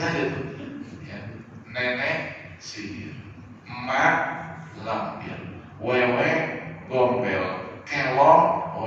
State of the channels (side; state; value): both; identical; correlation 1.00